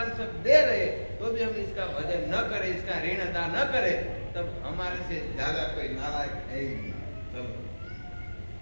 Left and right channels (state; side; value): inverted; both; correlation -1.00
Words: सब दे रहे तो भी हम इसका भजन न करें, इसका ऋण अदा न करें, तब हमारे से ज्यादा कोई नालायक है ही नहीं। तब